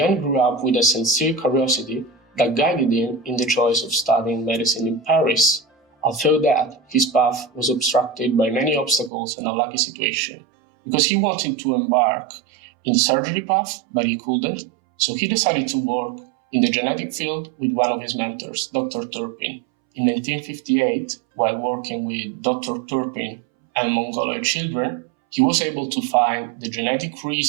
grew up with a sincere curiosity that guided him in the choice of studying medicine in Paris, although that his path was obstructed by many obstacles and a lucky situation, because he wanted to embark in the surgery path, but he couldn't, so he decided to work in the genetic field with one of his mentors, Dr. Turpin. In 1958, while working with Dr. Turpin and Mongoloid children, he was able to find the genetic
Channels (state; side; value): drops out; left; at 9.1 s